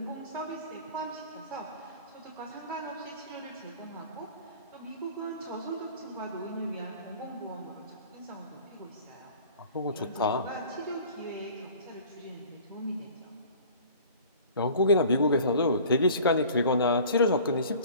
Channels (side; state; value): both; inverted; correlation -0.46